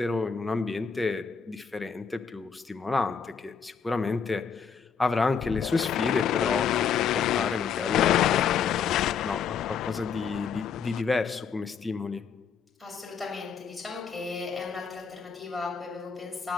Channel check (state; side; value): quieter; right; 6.4 dB